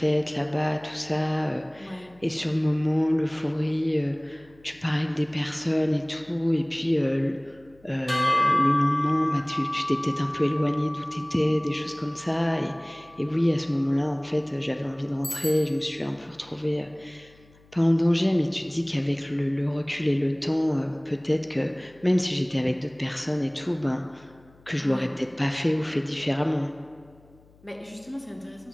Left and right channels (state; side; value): noise; left; hum, 28 dB below the sound